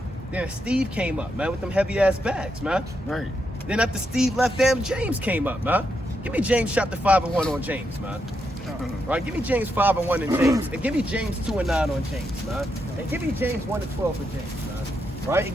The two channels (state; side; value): normal; both; correlation 0.82